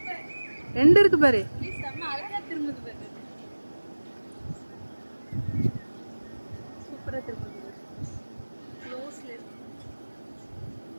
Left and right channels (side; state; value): both; inverted; correlation -1.00